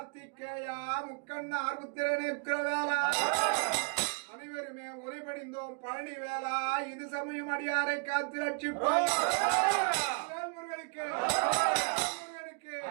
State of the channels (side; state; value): left; quieter; 35.3 dB